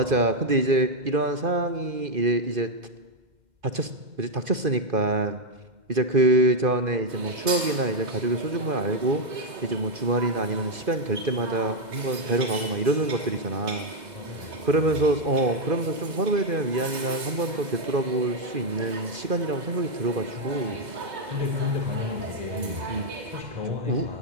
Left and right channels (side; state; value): left; late; 2.1 ms